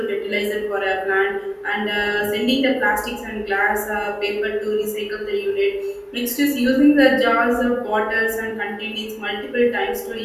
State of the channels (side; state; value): both; identical; correlation 1.00